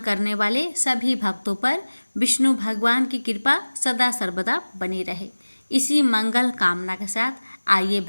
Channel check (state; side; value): inverted; both; correlation -1.00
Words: करने वाले सभी भक्तों पर विष्णु भगवान की कृपा सदा सर्वदा बनी रहे, इसी मंगल कामना के साथ आइए